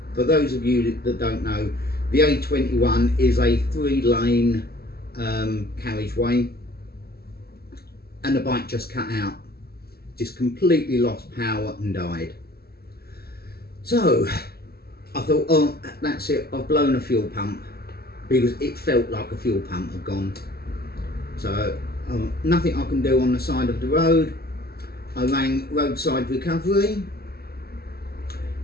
For those of you that don't know, the A21 is a 3-lane carriageway, and the bike just cut out, just completely lost power and died. So I thought, oh, that's it, I've blown a fuel pump, because it felt like a fuel pump had gone. So nothing I can do on the side of the road. I rang Roadside Recovery,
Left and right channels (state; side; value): late; right; 0.46 ms